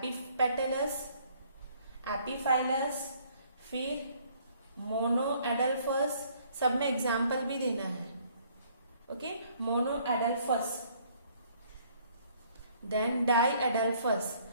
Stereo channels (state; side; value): inverted; both; correlation -0.62